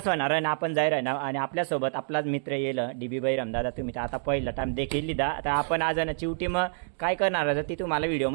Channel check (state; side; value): silent; left; digital silence